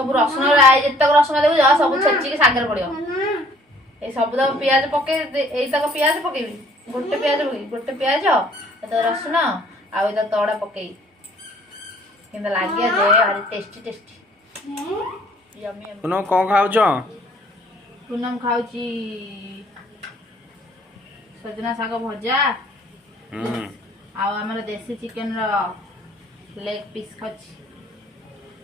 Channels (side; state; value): both; normal; correlation 0.57